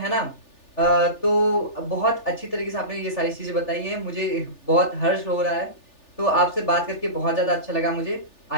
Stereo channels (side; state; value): right; late; 3.4 ms